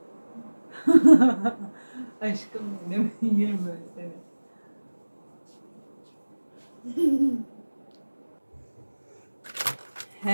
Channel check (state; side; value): inverted; both; correlation -1.00